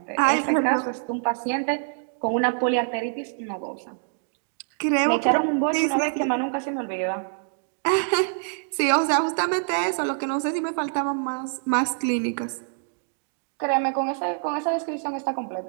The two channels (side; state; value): left; silent; digital silence